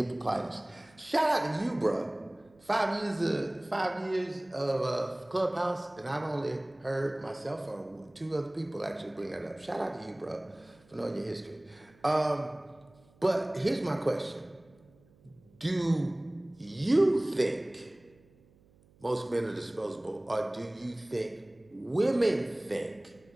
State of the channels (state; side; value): noise; right; hum, 29 dB below the sound